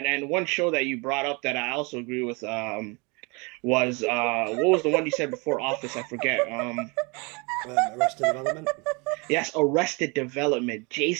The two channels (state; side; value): quieter; left; 29.7 dB